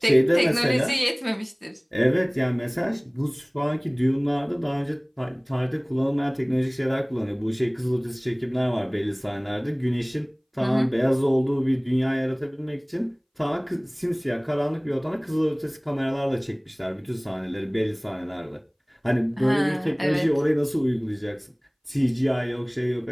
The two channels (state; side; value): identical; both; correlation 1.00